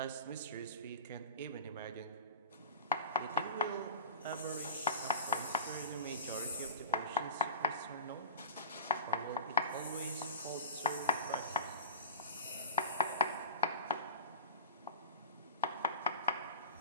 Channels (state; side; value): inverted; both; correlation -0.31